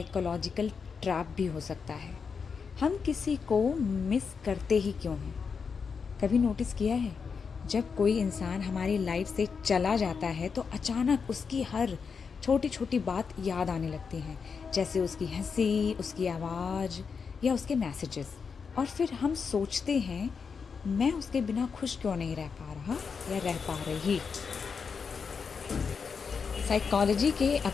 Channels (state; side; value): quieter; right; 5.7 dB